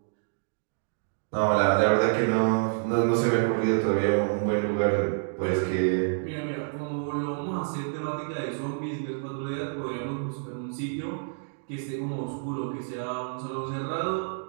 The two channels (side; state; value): left; silent; digital silence